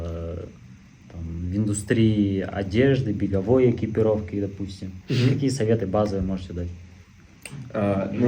в индустрии одежды, беговой экипировки, допустим? Какие советы базовые можете дать?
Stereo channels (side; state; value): both; identical; correlation 1.00